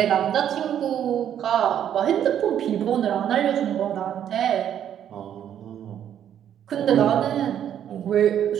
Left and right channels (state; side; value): quieter; left; 9.9 dB